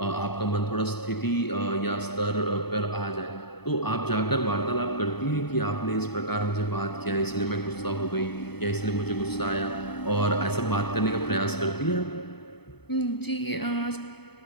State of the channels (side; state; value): right; late; 0.98 ms